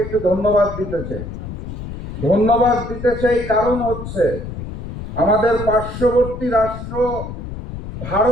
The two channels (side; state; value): left; noise; rumble, 9 dB below the sound